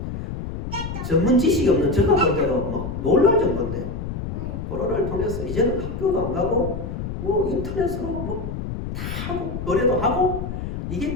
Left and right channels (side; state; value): left; noise; rumble, 6 dB below the sound